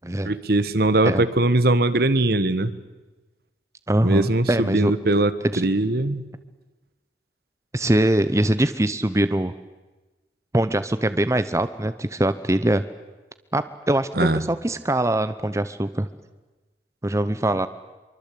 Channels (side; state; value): both; normal; correlation 0.67